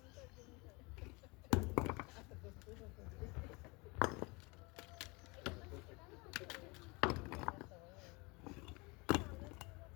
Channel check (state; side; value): quieter; right; 27.0 dB